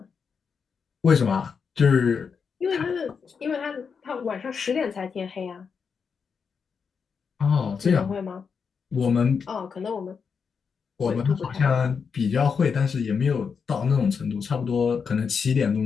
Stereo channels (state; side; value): quieter; right; 6.0 dB